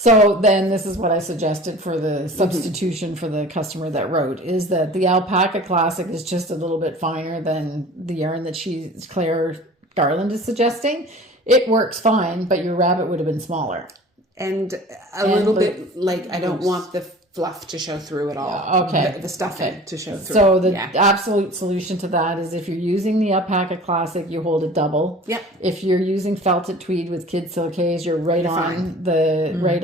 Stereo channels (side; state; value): both; normal; correlation 0.42